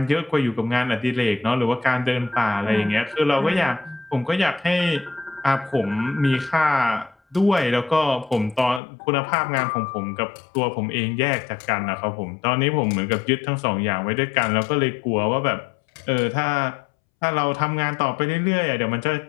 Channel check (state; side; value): drops out; right; at 8.8 s